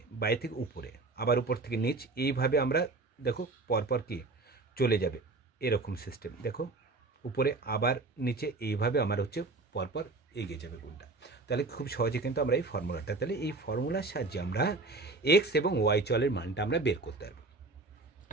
বায়ে থেকে উপরে, আবার উপর থেকে নিচ, এইভাবে আমরা দেখো পরপর কি চলে যাবে, এরকম সিস্টেম। দেখো উপরে আবার নিচে, এইভাবে আমার হচ্ছে পরপর এগিয়ে যাবে গুণটা। তাহলে খুব সহজে কিন্তু আমরা এই ফর্মুলাটা, তাহলে এই ফর্মুলার সাহায্যে আমরা এক্স এবং ওয়াই চলের মানটা আমরা বের করতে পারবো।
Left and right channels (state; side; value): quieter; left; 3.5 dB